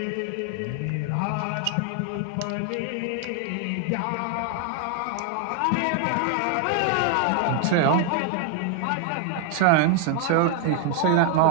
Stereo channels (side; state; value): both; different; correlation 0.01